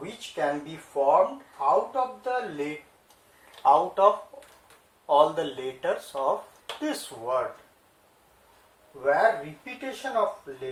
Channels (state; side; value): identical; both; correlation 1.00